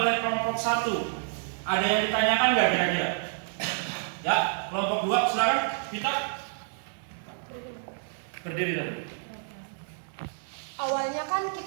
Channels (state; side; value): silent; left; 59 dB below the other